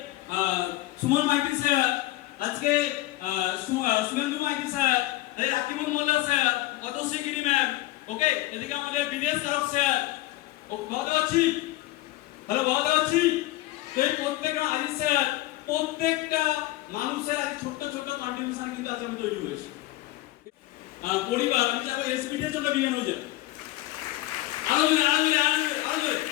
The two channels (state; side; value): quieter; right; 17.3 dB